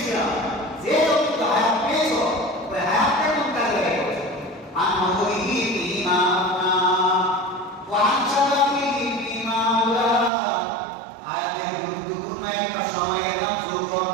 যে যতটুকু হায়াত পেয়েছো, ওই হায়াতটা কোন কাজে লাগাইছো? আন আমরিহি বিমা আফনা ওয়া আন শাবাবিহি বিমা আওলা। হায়াতের গুরুত্বপূর্ণ একটা সময় এটা যৌবন।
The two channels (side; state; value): left; drops out; at 10.3 s